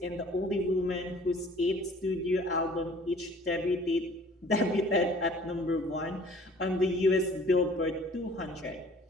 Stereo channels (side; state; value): both; normal; correlation 0.52